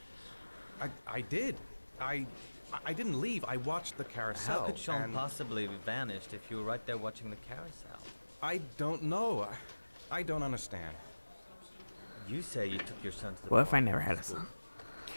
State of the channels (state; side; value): inverted; both; correlation -1.00